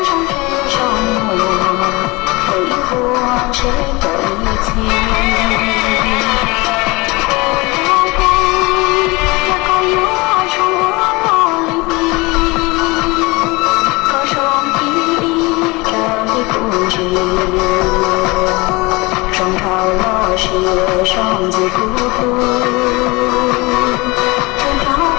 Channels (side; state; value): right; quieter; 24.2 dB